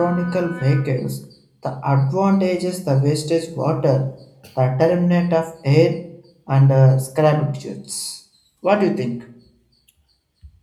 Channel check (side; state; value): both; identical; correlation 1.00